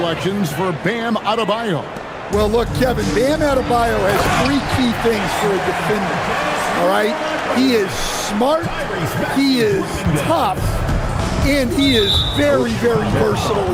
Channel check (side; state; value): both; identical; correlation 1.00